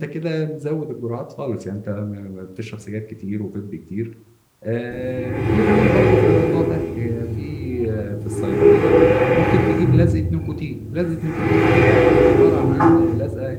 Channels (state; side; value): identical; both; correlation 1.00